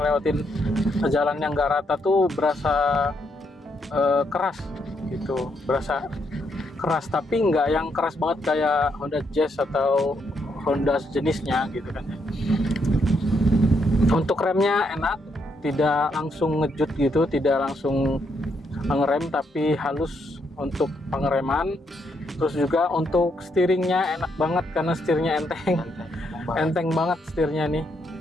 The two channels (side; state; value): both; normal; correlation 0.76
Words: jalan yang gak rata tuh berasa keras gitu, berasa keras, tapi nggak yang keras banget kayak Honda Jazz atau Honda sejenisnya gitu kan. Untuk remnya enak, tidak langsung ngejut gitu, tidak langsung ngerem tapi halus untuk pengereman. Terus juga untuk steeringnya enak banget karena setirnya enteng banget setirnya nih,